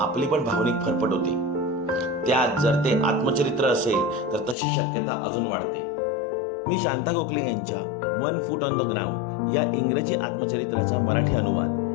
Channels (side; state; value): right; drops out; at 4.5 s